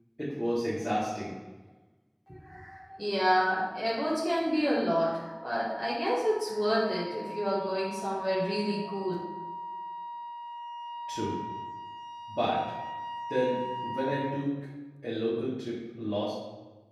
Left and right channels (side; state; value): both; identical; correlation 1.00